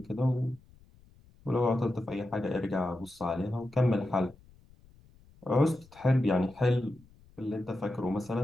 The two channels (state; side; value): noise; left; rumble, 27 dB below the sound